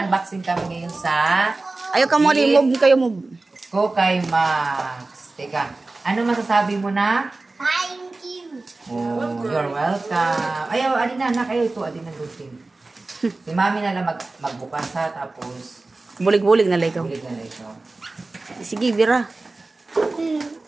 kami ngayon sa Ayaw ka mo, move kayo move. Kukay Max. Teka, ano masasabi mo na? Thank you. Oh, you're welcome. Ayaw, alin na, kayo ito, alin na lutin. Si mami na lang magbukas ha, tapos Bulig-bulig na lang ikaw. bulig na lang ikaw. Sige, Bira.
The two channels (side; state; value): left; quieter; 3.3 dB